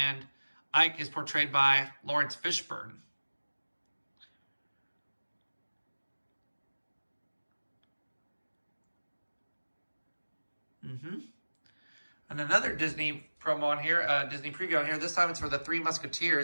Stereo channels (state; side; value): inverted; both; correlation -1.00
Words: Ike is portrayed by Lawrence Fishburne. And another Disney promo on here, Disney preview on here. This time it's for The Three